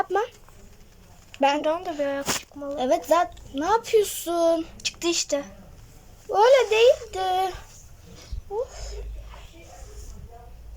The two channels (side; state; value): both; identical; correlation 1.00